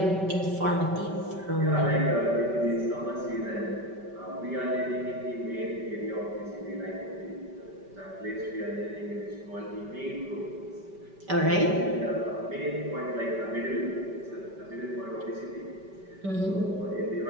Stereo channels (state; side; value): late; left; 5.1 ms